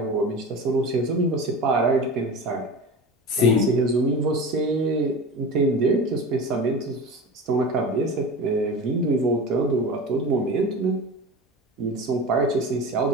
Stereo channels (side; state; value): both; normal; correlation 0.31